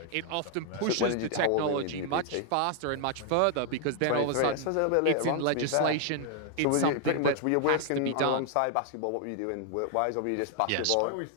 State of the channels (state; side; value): different; both; correlation 0.00